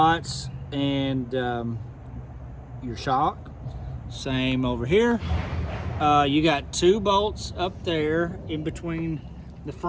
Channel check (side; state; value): both; identical; correlation 1.00